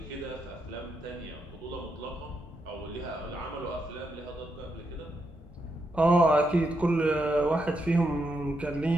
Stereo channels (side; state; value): both; normal; correlation 0.82